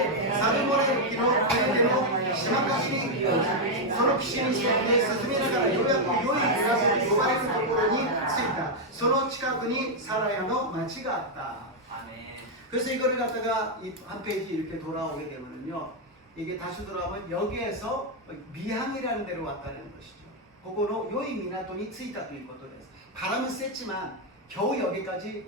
サルモネルキの船での島かしにその岸に沿って進めながらようやく良いグラスと呼ばれるところに着いたその近くにサラヤの町があった. 그래서 이거를 갖다가 한 페이지 이렇게 돌아오게 되면요 이게 다시 돌아오면 여기에서 미항이라는 데로 왔다는 것이죠. 그거로 요이 미나토니 쓰이다ということです. 바람은 셌지만 겨우 여기까지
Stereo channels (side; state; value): both; normal; correlation 0.00